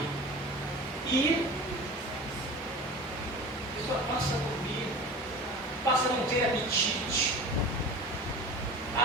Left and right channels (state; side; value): normal; both; correlation 0.36